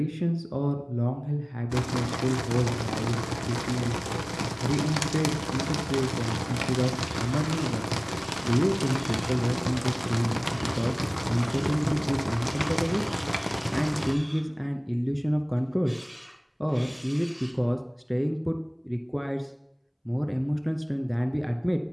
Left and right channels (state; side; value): identical; both; correlation 1.00